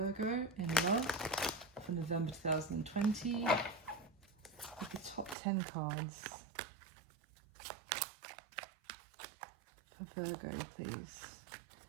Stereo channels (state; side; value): drops out; left; at 5.4 s